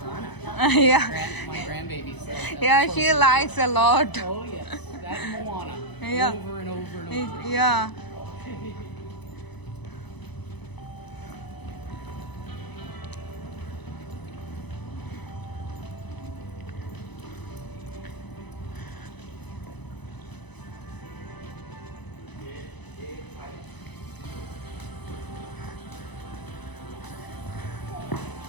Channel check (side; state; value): right; late; 1.0 ms